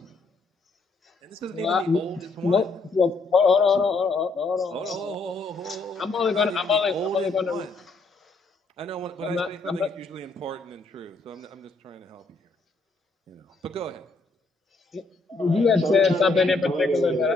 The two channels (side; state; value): right; quieter; 3.5 dB